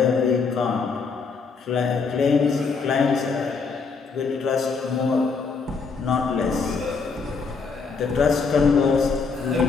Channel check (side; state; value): right; quieter; 4.9 dB